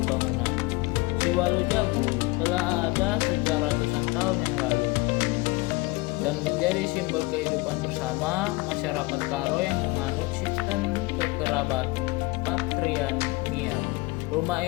bangunan. Siwalu Jabu telah ada sejak ratusan tahun yang lalu dan menjadi simbol kehidupan bersama masyarakat Karo yang menganut sistem kekerabat patrilineal. Rumah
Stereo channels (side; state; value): right; quieter; 23.0 dB